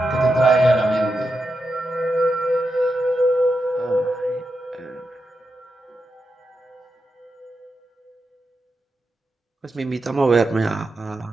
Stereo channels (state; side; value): normal; both; correlation 0.87